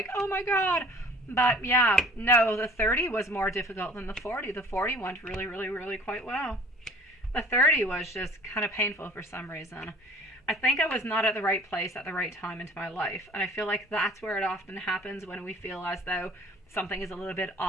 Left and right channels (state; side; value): normal; both; correlation 0.51